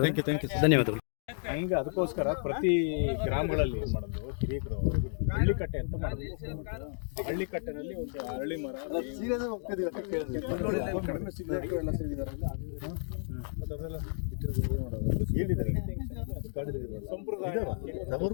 ಧನ್ಯವಾದಗಳು. ಹಂಗೆ ಅದಕ್ಕೋಸ್ಕರ ಪ್ರತಿ ಗ್ರಾಮಗಳಲ್ಲಿ ಏನು ಮಾಡೋದು, ಹಿರಿಯರು ಹಳ್ಳಿಕಟ್ಟೆ ಅಂತ ಮಾಡೋದು. ಹಳ್ಳಿಕಟ್ಟೆನಲ್ಲಿ ಒಂದು ಅರಳಿ ಮರ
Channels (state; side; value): silent; right; 56 dB below the other